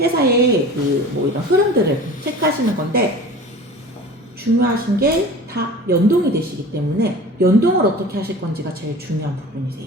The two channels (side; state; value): both; normal; correlation 0.39